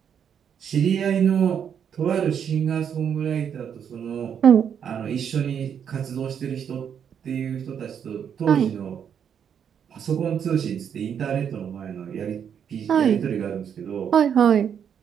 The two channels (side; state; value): left; quieter; 8.1 dB